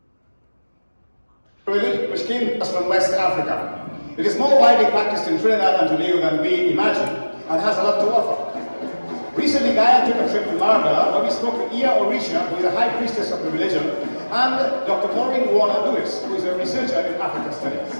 Which came to us from West Africa. It is more widely practiced in Trinidad and Tobago than we imagine, and has a lot to offer. Recently, Gaia took a trip to Marga, where we spoke to Ia Orisha, who is a high priestess of the religion, and Dr. Maureen Warner-Lewis, who is a researcher in African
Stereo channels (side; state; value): both; inverted; correlation -1.00